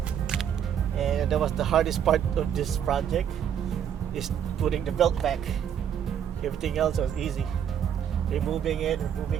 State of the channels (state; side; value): quieter; left; 8.9 dB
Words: and that was the hardest part of this project, is putting the belt back. Everything else was easy. Removing